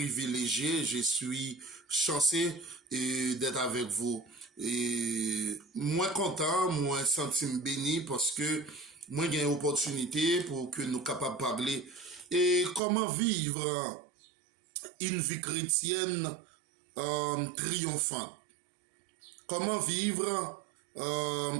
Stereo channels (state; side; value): drops out; left; at 12.8 s